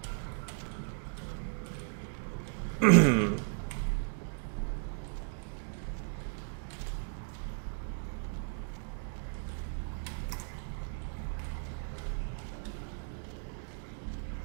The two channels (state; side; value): silent; left; digital silence